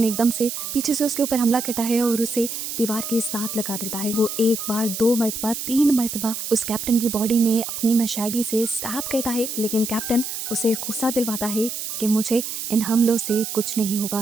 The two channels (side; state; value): right; noise; hiss, 5 dB below the sound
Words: एकदम से पीछे से उसके ऊपर हमला करता है और उसे दीवार के साथ लगा देता है। वो एक बार, 2 मरतबा, 3 मरतबा उस कैप्टन की बॉडी में अपनी मशाली से स्टैब करता है, लेकिन कैप्टन उसे गुस्सा दिलवाता है कि मुझे इन हमलों से कुछ नहीं